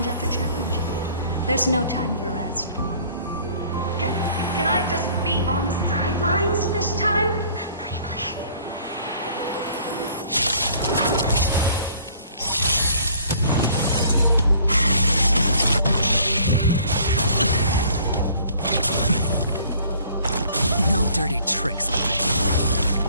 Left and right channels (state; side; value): inverted; both; correlation -0.55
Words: after challenge. There's no time for rest. Can I just be on the sidelines this time? Pretty please. No dirty tricks.